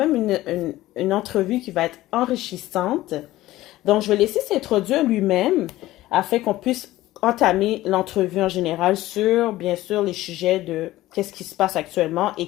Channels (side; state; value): right; quieter; 16.3 dB